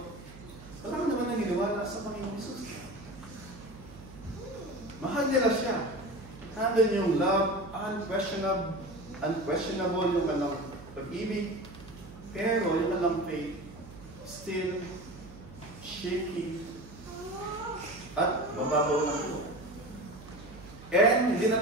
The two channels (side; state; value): right; noise; hum, 17 dB below the sound